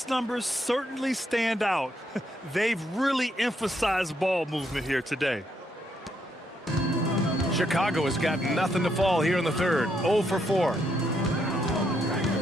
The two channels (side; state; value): both; normal; correlation 0.76